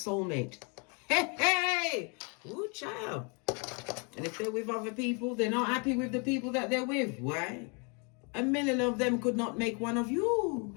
Hey, hey! Ooh, child. And if they're with other people, they're not happy with the people that they're with. Why? 1,000,000 of them could not make one of you.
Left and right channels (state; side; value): quieter; right; 34.4 dB